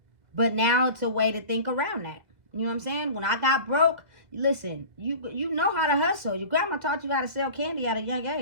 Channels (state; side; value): late; left; 2.0 ms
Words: But now it's a way to think around that. You know what I'm saying? When I got broke, listen, you know how to hustle. Your grandma taught you how to sell candy at a young